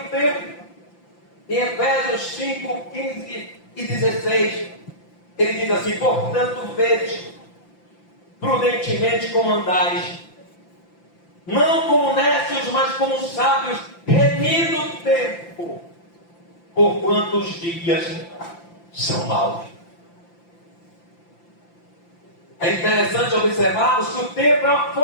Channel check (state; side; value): late; right; 5.8 ms